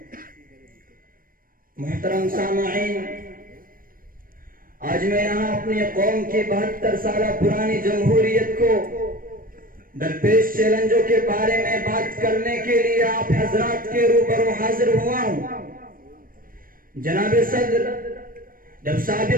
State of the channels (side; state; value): left; late; 0.41 ms